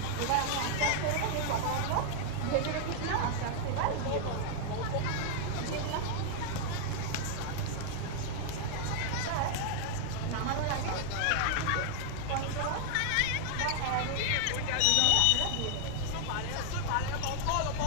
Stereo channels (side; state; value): both; different; correlation 0.00